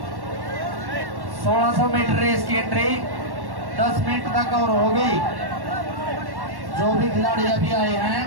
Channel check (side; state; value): left; late; 1.1 ms